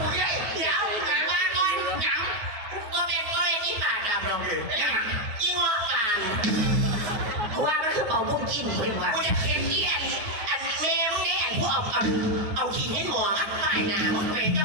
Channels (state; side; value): late; left; 9.5 ms